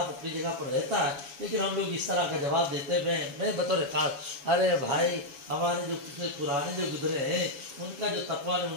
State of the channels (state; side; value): late; left; 7.1 ms